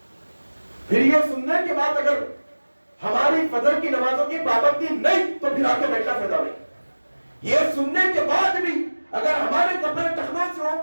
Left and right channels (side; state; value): both; inverted; correlation -1.00